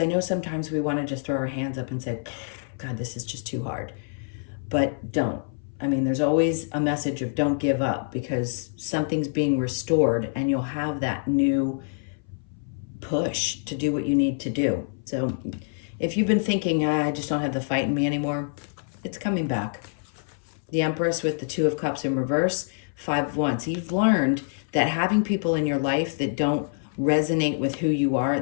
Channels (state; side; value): silent; right; 59 dB below the other